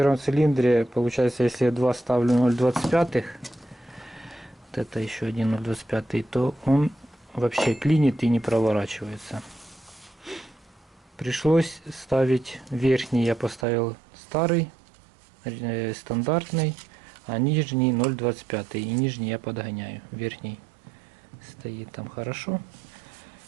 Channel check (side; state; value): left; drops out; at 13.7 s